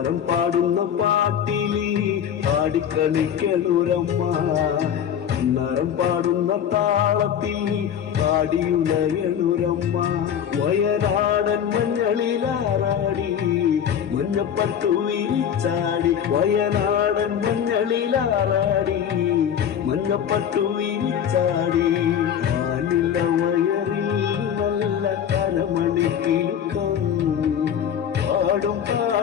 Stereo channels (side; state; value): right; quieter; 8.9 dB